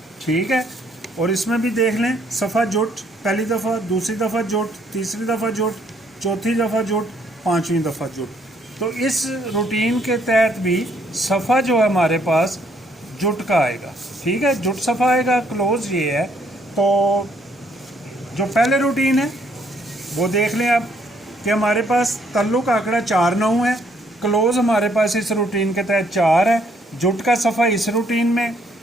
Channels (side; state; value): both; normal; correlation 0.68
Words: ठीक है। और इसमें भी देख लें सफ़ा जुट, पहली दफ़ा, दूसरी दफ़ा जुट, तीसरी दफ़ा जुट, चौथी दफ़ा जुट, पाँचवीं दफ़ा जुट। तो इस रूटीन के तहत भी सफ़ा जो है हमारे पास जुट का आएगा, ठीक है, जुट सफ़ा आएगा। क्लोज़ ये है। तो जो पहले रूटीन है वो देख लें आप कि हमारे पास तल्लुक आंकड़ा 4 9 है, क्लोज़ हमारे पास इस रूटीन के तहत 4 है, जुट का सफ़ा इस रूटीन में,